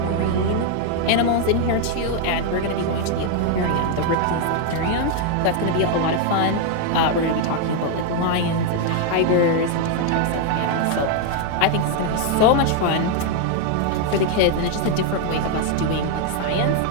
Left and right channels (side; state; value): both; different; correlation 0.00